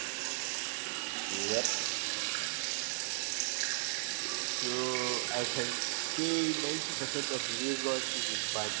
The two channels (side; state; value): left; silent; digital silence